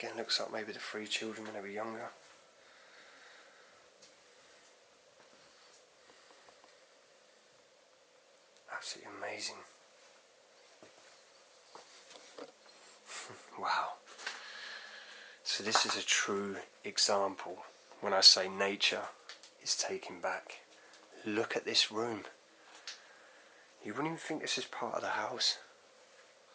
looks like maybe the 3 children when they were younger. Absolutely amazing. Wow. So this is a true example when I say nature is taking back. Look at this room. You wouldn't even think this is part of the house.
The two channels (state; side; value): identical; both; correlation 1.00